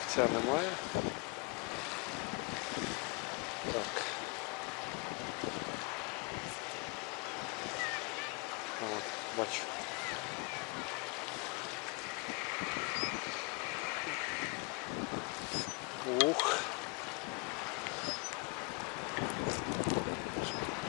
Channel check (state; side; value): quieter; right; 30.2 dB